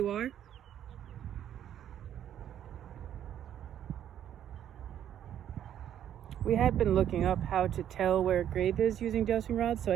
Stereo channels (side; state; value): left; quieter; 10.4 dB